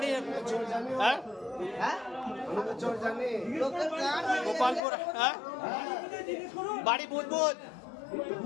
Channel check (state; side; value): drops out; right; at 4.8 s